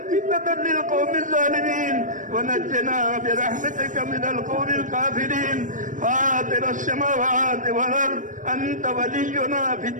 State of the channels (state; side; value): late; left; 0.37 ms